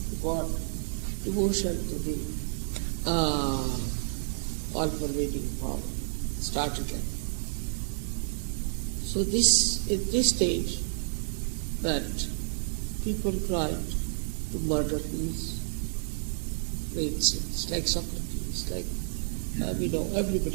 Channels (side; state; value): left; silent; 58 dB below the other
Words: God, devotion to the all-pervading power, started like. So this, at this stage, that people tried to murder these great saints, like Socrates, like, we know